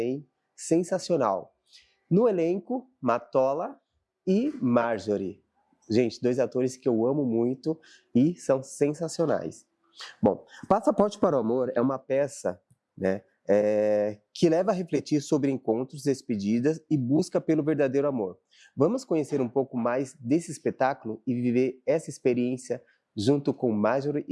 Sensacional. No elenco, Matola e Marjorie. Gente, dois atores que eu amo muito e são sensacionais. Bom, Passaporte para o Amor é uma peça, né, que leva a refletir sobre encontros, despedidas e busca pelo verdadeiro amor. Vamos conhecer um pouco mais desse espetáculo e viver essa experiência junto com Marjorie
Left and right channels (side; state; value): both; identical; correlation 1.00